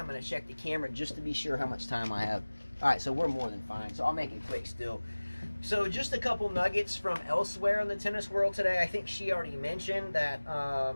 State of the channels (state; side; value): inverted; both; correlation -1.00